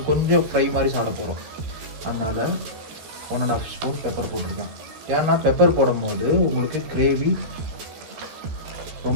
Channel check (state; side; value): late; left; 13 ms